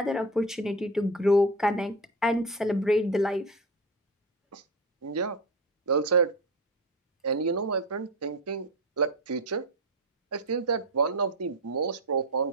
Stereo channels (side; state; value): both; normal; correlation 0.22